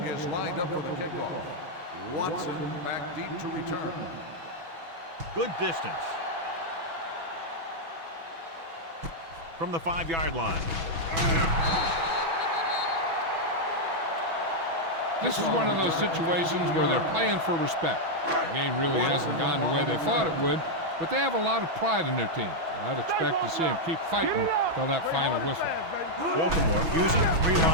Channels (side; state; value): left; late; 6.1 ms